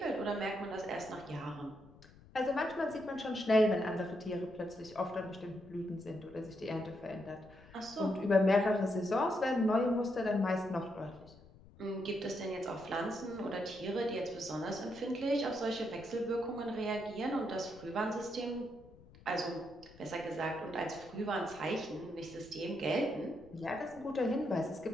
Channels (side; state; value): left; noise; rumble, 22 dB below the sound